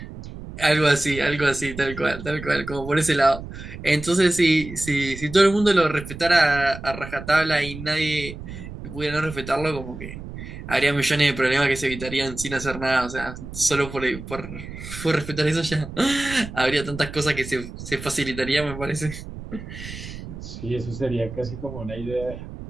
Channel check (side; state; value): right; noise; rumble, 11 dB below the sound